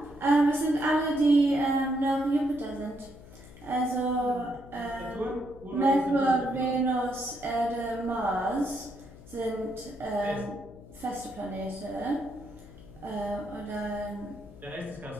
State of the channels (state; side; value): noise; left; hum, 19 dB below the sound